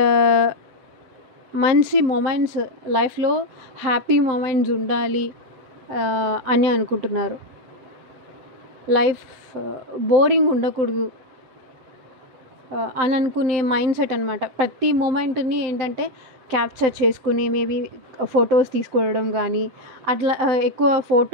మంచి మూమెంట్స్ లైఫ్లో హ్యాపీ మూమెంట్స్ ఉండాలి అని అనుకుంటున్నారు. లైఫ్ బోరింగ్ ఉండకూడదు అని అనుకునే మైండ్ సెట్ అనమాట. ప్రతి మూమెంట్ని ఏంటంటే క్యాప్చర్ చేసుకుని మేబీ ఫొటోస్ తీసుకోవడం కానీ, అట్లా ఎక్కువ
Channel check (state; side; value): late; left; 7.7 ms